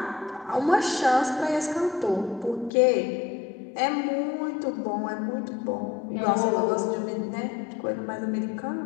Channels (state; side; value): drops out; right; at 2.7 s